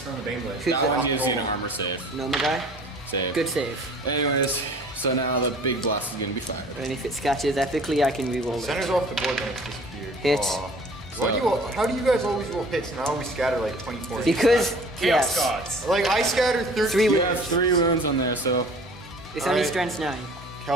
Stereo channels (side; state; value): both; normal; correlation 0.48